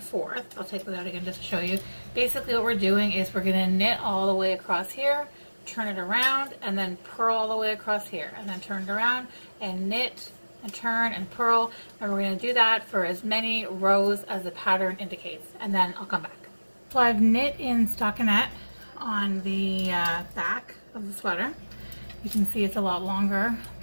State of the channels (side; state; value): both; inverted; correlation -1.00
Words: forth. I'll take that out again just to show you. Basically what we're doing is we're going to knit all the way across here, turn it around, and then purl all the way across here, and then turn it around and knit and turn and purl, and we're going to do that for as many rows as the pattern indicates, and then I'll come back. So I've knit in stockinette on the back of the sweater. You can see it's a lot longer